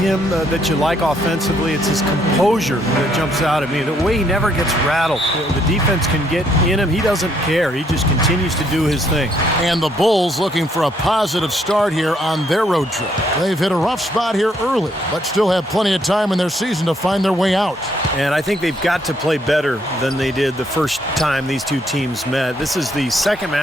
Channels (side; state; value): both; normal; correlation 0.70